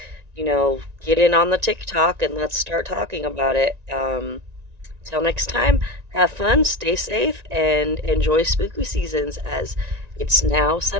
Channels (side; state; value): left; late; 1.9 ms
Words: get in on the TikTok and let's start talking about it. Till next time, have fun, stay safe, and enjoy spooky seasons, as it's now